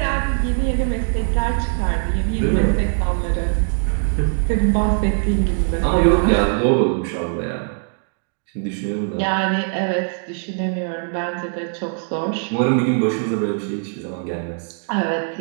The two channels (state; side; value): silent; left; digital silence